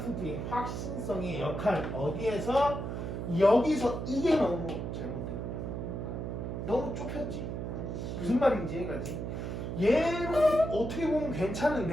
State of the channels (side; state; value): right; noise; hum, 4 dB below the sound